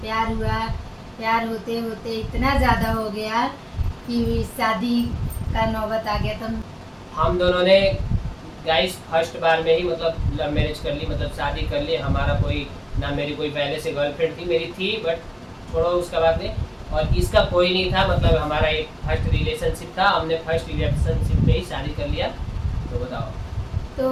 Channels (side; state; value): both; identical; correlation 1.00